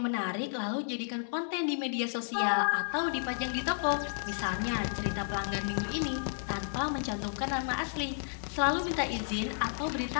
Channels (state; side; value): silent; right; 56 dB below the other